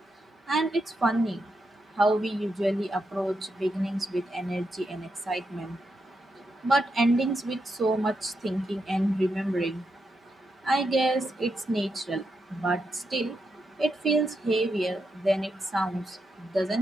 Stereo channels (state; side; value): normal; both; correlation 0.84